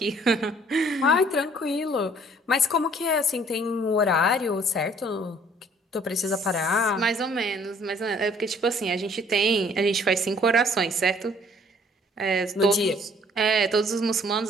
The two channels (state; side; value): normal; both; correlation 0.58